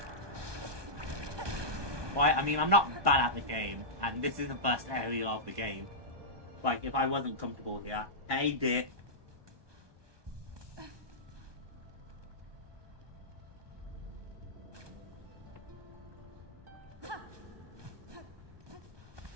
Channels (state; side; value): late; left; 1.2 ms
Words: Why? I mean, I'm not bad at the game, and this is the first area of the game. Like, if I wasn't comfortable here, hey, dip.